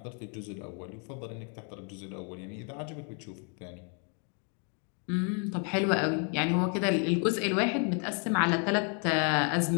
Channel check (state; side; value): quieter; right; 39.9 dB